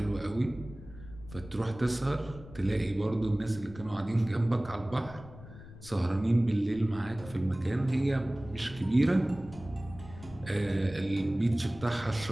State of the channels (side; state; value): left; noise; rumble, 17 dB below the sound